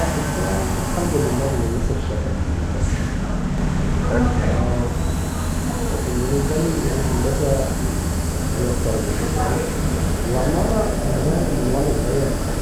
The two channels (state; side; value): identical; both; correlation 1.00